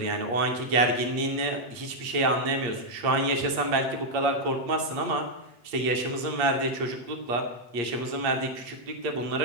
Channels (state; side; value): late; left; 8.5 ms